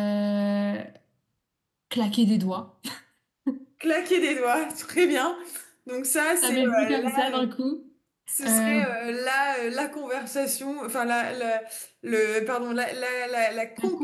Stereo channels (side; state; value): both; identical; correlation 1.00